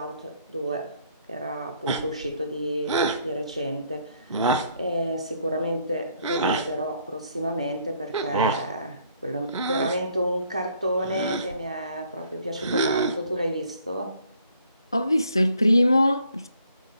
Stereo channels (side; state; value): both; inverted; correlation -0.65